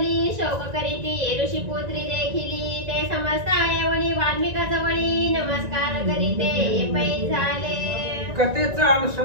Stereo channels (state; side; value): late; left; 1.9 ms